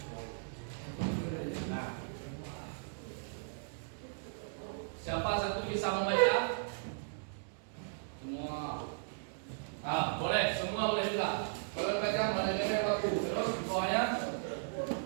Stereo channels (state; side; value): silent; left; digital silence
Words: Siapa satu bisa membaca? Semua. Boleh, semua boleh juga. Kalau baca manajemen waktu, terus di bawahnya